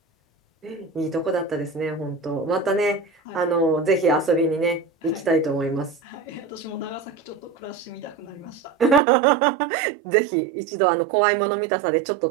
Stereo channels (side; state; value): left; drops out; at 9.0 s